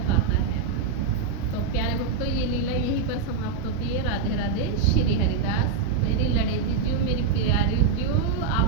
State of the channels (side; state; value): left; quieter; 5.7 dB